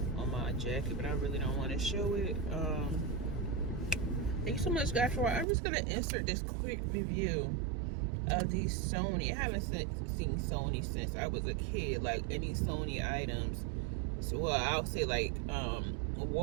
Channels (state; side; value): drops out; left; at 5.5 s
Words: my jacket, but I really don't want to show it. Thank you so much, guys, for watching. I'm just gonna insert this quick review of these Sony. I haven't seen Sony since I was a kid, like any Sony items. So, well, I'll say like